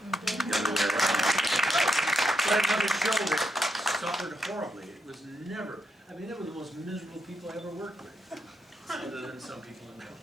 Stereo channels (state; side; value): normal; both; correlation 0.80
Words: other way around. But another show that suffered horribly. It was never, they were the most miserable people I ever worked with. Other than some people in that